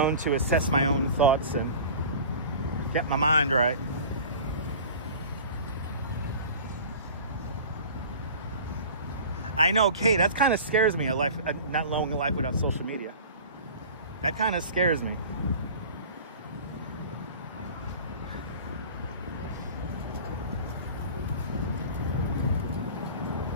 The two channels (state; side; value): inverted; both; correlation -0.40